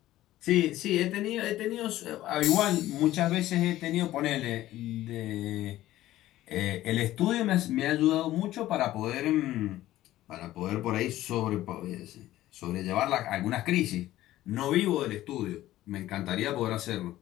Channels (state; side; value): quieter; right; 14.9 dB